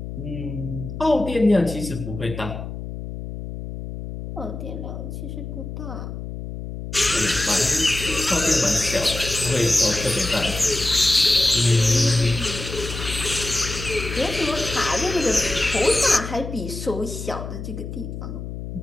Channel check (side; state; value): left; noise; hum, 8 dB below the sound